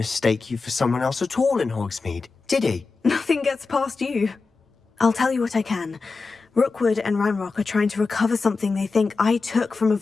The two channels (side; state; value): right; quieter; 4.3 dB